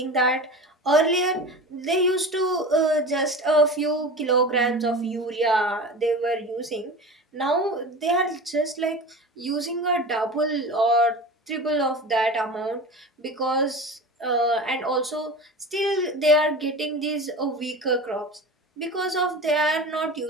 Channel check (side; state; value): both; normal; correlation 0.32